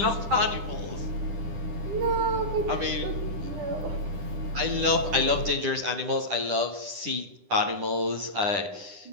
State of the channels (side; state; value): left; late; 10 ms